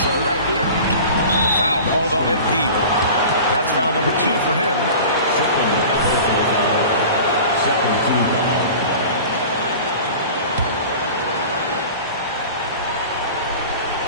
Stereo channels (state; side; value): inverted; both; correlation -0.38